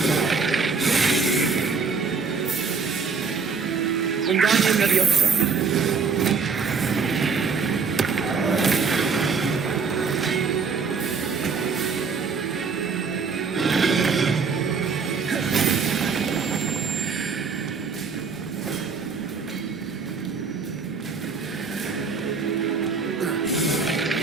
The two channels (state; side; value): quieter; left; 5.1 dB